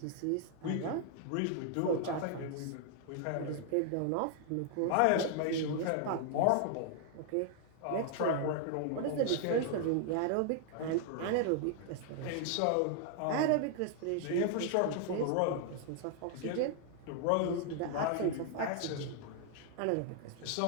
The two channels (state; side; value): different; both; correlation 0.00